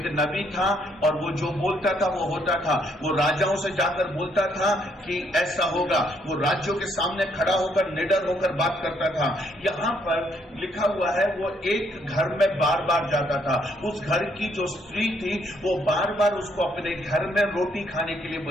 नबी था और वो जो बोलता था वो होता था। वो राजाओं से जाकर बोलता था कि ऐसा होगा, वो राज्यों के सामने खड़ा होकर निडर होकर बात करता था। यहाँ पर लिखा हुआ है वो एक घर में बार बार जाता था। उस घर की जो स्त्री थी वो बार बार उसको अपने घर में रोटी खाने के लिए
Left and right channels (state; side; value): normal; both; correlation 0.70